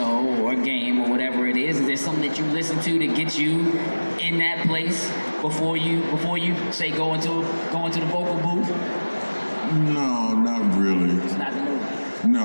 or a game or whatever it is there something that you listen to get you in that place before you say go into the vocal booth? No, not really. It's not the movie.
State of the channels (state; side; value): inverted; both; correlation -1.00